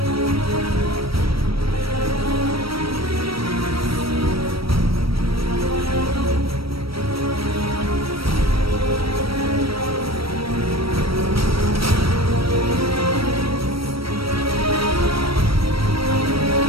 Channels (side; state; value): left; late; 0.75 ms